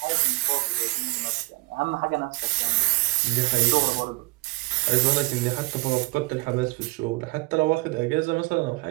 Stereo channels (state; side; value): quieter; left; 24.3 dB